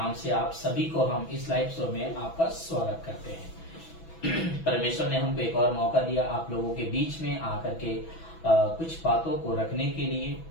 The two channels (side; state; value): right; late; 6.1 ms